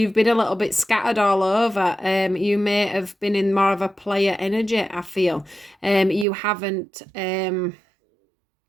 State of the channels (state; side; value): drops out; left; at 6.2 s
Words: been a little bit scattered all over. You may have been in more of a player energy, I feel. You haven't